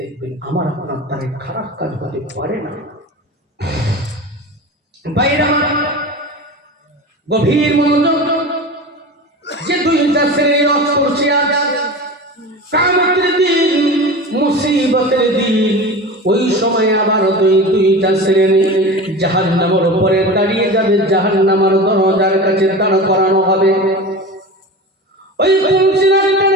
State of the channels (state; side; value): normal; both; correlation 0.31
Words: আমার আপনার দ্বারা খারাপ কাজ হতে পারে না। বাইরে গভীর মনোযোগ, যে 2টা শ্রেণীর রথ করছে আজ, কিয়ামতের দিন, মুসিবতের দিন, ওই সময় আবার দুইটা শ্রেণী জাহান্নামের উপরে দাঁড়িয়ে যাবে, জাহান্নামের দরজার কাছে দাঁড় করানো হবে। ওই পুলসিরাতের